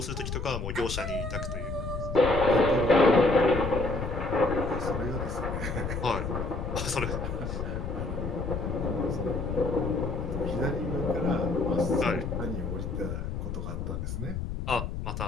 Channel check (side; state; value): left; noise; rumble, 4 dB below the sound